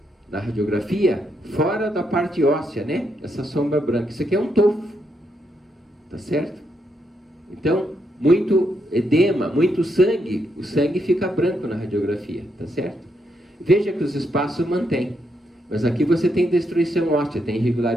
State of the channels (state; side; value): normal; both; correlation 0.79